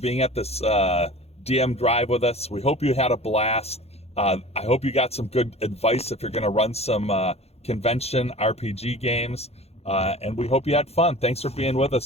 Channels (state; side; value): late; right; 0.30 ms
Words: at this DM drive with us. We hope you had a blast. I hope you got some good advice if you're going to run some convention RPG games. And we hope you had fun. Thanks for being with